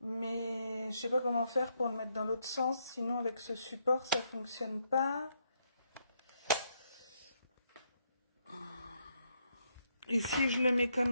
Mais je sais pas comment faire pour le mettre dans l'autre sens. Sinon, avec ce support, ça fonctionne pas. Et si je le mets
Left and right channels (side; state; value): both; inverted; correlation -0.76